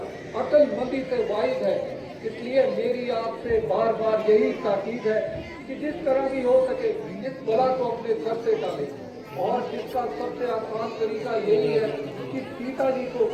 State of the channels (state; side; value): identical; both; correlation 1.00